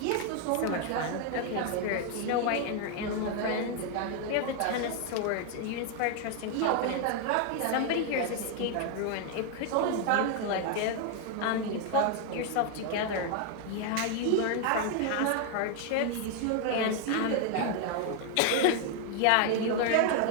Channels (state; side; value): different; both; correlation 0.00